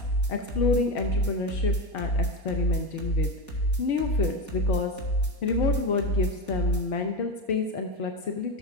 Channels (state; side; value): late; right; 4.8 ms